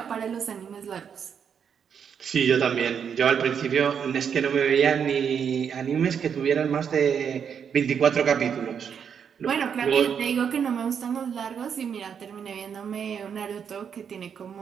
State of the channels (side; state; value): left; quieter; 7.4 dB